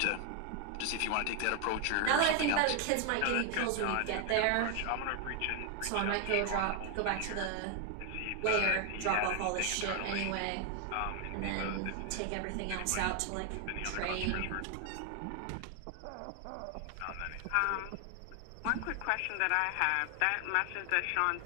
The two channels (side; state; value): both; different; correlation 0.00